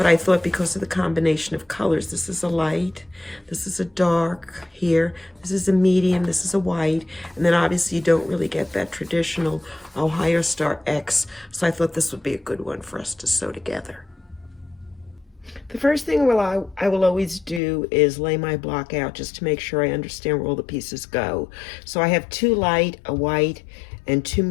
I thought because of the combination of colors, this is a light, this is a dark here, this is a medium, this is a white, and then obviously you don't really get that traditional Ohio Star X, so I thought this would be a good one for us to sew together. The first thing I will always do is lay my block out just to make sure I understand where all the pieces go. So I have 2 light, a white, and 2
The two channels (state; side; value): drops out; right; at 17.6 s